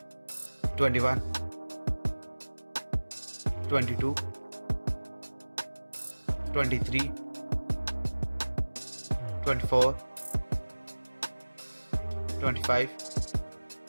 21, 22, 23, 24, 25.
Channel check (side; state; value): both; inverted; correlation -1.00